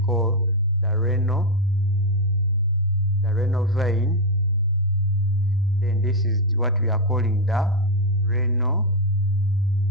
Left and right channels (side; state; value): both; normal; correlation 0.02